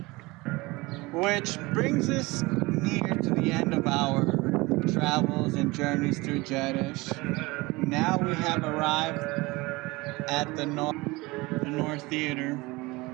Which brings us near to the end of our travels and journeys through Jerash. Now we have arrived at the North Theater.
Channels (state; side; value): quieter; left; 22.7 dB